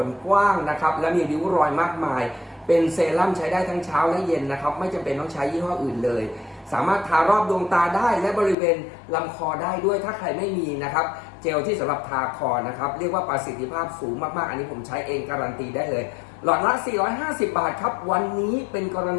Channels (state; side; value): drops out; right; at 8.6 s